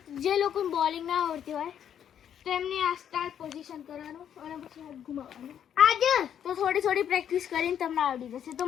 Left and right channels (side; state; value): right; quieter; 9.3 dB